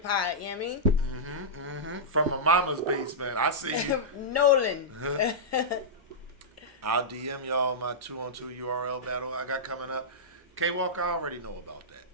you know what I mean? From a mama's basement. I see you. Nolan. I'll DM y'all my 2-on-2 URL battle I got coming up. K Walker, I already know about that.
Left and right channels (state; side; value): normal; both; correlation -0.13